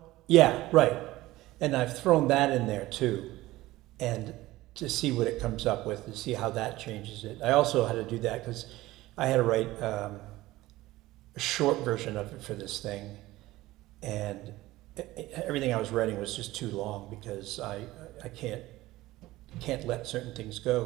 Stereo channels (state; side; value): quieter; left; 17.6 dB